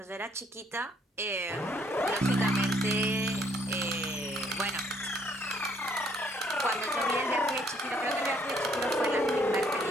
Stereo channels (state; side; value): normal; both; correlation 0.66